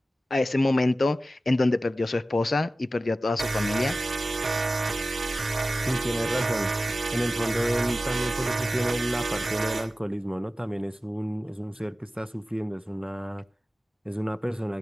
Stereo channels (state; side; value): normal; both; correlation 0.95